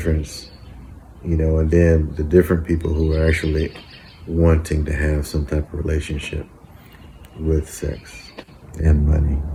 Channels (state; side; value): identical; both; correlation 1.00